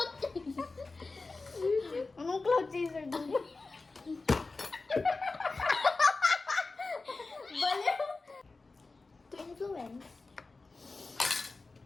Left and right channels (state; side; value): quieter; right; 3.7 dB